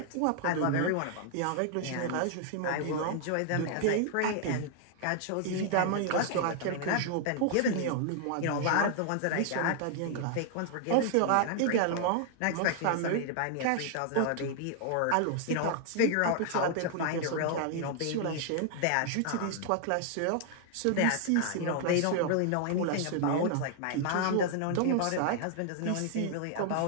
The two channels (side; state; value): both; different; correlation -0.01